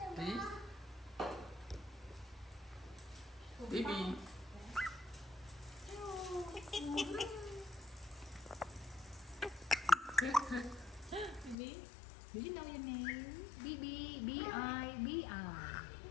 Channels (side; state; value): right; drops out; at 11.6 s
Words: Bibi. Bibi. Bibi. Do you know your name? Bibi. B-I. B-I.